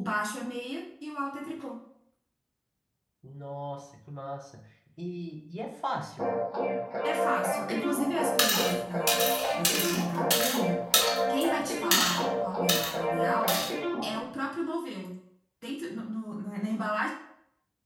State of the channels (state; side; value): identical; both; correlation 1.00